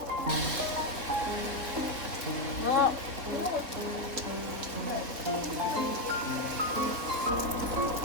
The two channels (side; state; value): left; late; 3.8 ms